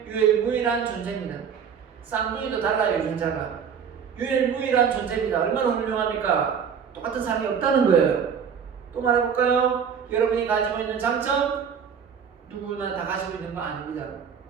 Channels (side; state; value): left; quieter; 7.1 dB